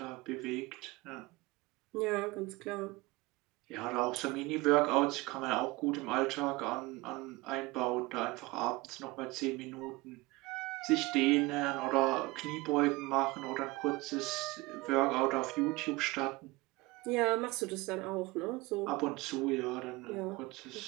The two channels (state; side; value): quieter; left; 22.2 dB